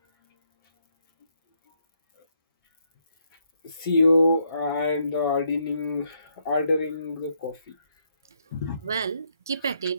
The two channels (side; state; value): both; inverted; correlation -0.75